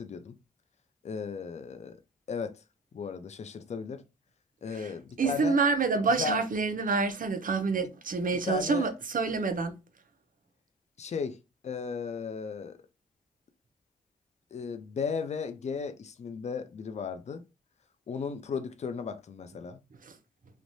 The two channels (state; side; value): normal; both; correlation 0.35